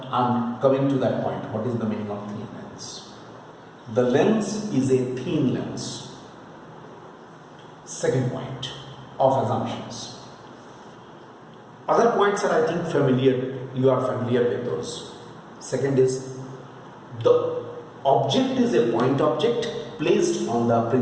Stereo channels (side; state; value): both; identical; correlation 1.00